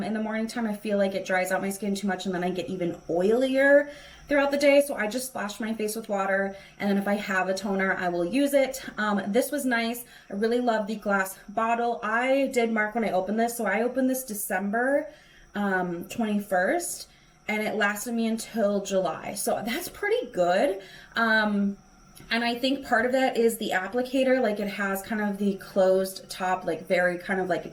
the morning time, I feel like it dries out my skin too much, and then I get even oilier throughout the day. So I just splash my face with water, and then if I have a toner, I will use it. This was nice. I really love the glass bottle. I did mark when I opened this. So I opened this December 21st, and it lasted me until July. So that's pretty good. And I think part of that is the applicator. Like it has kind of the closed top, like very kind of like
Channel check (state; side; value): identical; both; correlation 1.00